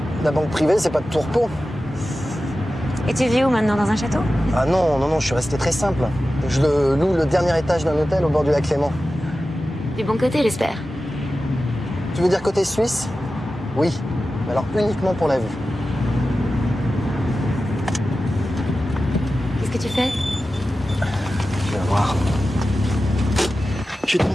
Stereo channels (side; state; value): both; normal; correlation 0.94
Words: La banque privée, c'est pas de tout repos. Et tu vis où maintenant? Dans un château? Ah non, je suis resté très simple. Je loue le dernier étage d'un hôtel au bord du lac Léman. Du bon côté, j'espère. Tu veux dire côté suisse? Oui, mais alors uniquement pour la vue. Qu'est-ce que tu fais? Tu vas voir. Je vais te